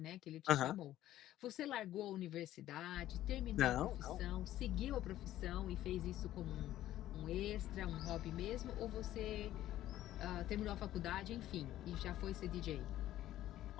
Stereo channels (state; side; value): quieter; right; 13.5 dB